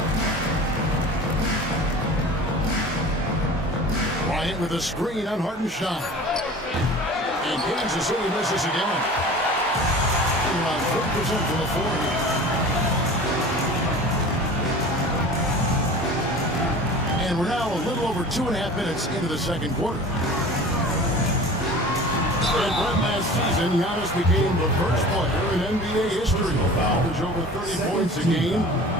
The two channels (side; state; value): both; normal; correlation 0.40